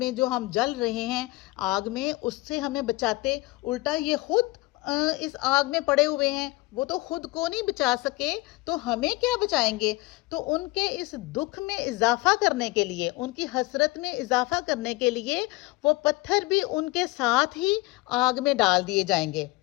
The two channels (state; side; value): quieter; right; 21.3 dB